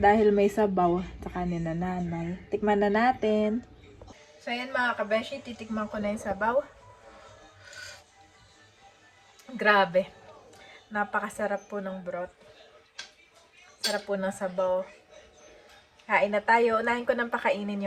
may sabaw. Saka ni na nanay. Tikman na natin. So ayan mga kabeshi, titikman ko na yung sabaw. Grabe. Napakasarap po ng broth. Sarap po ng sabaw. Kain na tayo. Unahin ko nang pakainin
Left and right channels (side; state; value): both; identical; correlation 1.00